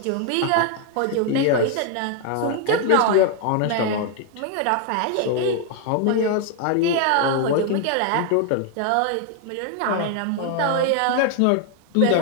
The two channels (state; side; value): different; both; correlation 0.00